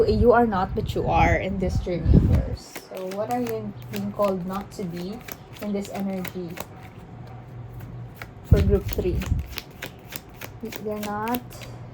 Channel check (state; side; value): identical; both; correlation 1.00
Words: a you are not but you are in this journey of yours. So what are you being called not to be in this energy for group 3? They